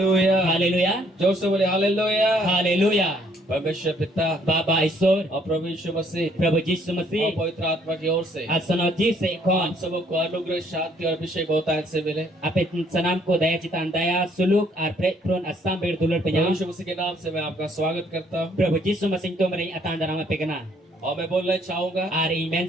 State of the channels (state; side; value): normal; both; correlation 0.65